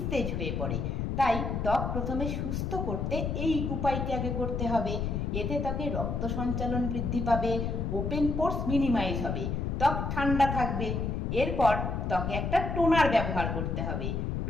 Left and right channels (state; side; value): noise; left; rumble, 1 dB below the sound